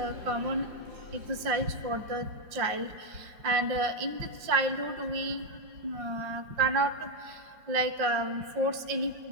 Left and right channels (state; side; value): late; left; 5.6 ms